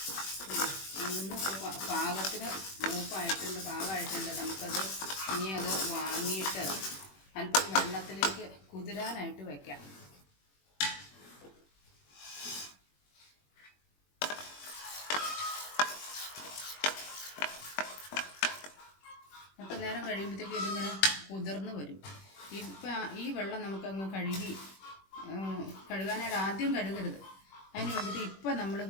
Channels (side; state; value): right; late; 21 ms